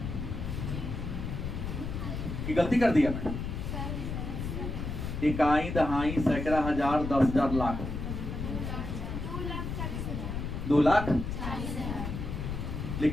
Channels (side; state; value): left; noise; rumble, 4 dB below the sound